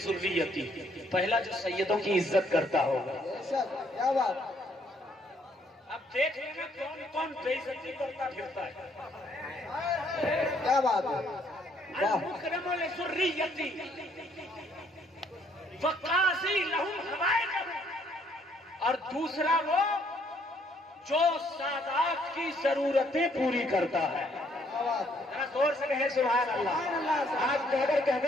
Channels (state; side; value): normal; both; correlation 0.67